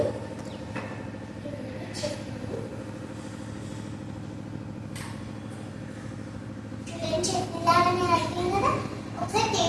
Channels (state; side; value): identical; both; correlation 1.00